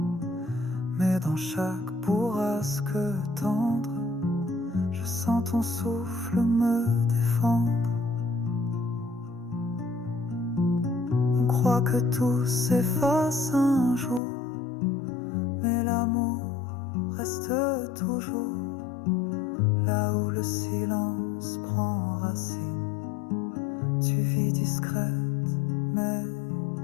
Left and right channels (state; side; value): drops out; right; at 14.2 s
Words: Mais dans chaque bourrasque tendre, je sens ton souffle me défendre. On croit que tout s'efface un jour, mais l'amour reste toujours là où le silence prend racine. Tu vis discrète mais